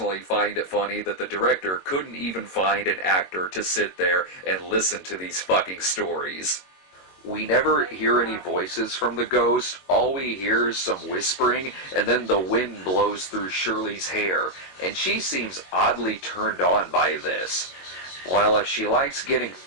find it funny that the director couldn't even find an actor to sit there and listen to these fucking stories. We never hear any voices from the ghost. All we hear is some whispering, and then the wind blows through Shirley's hair, and she seems oddly turned on by this. Well, if she likes getting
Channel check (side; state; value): right; late; 22 ms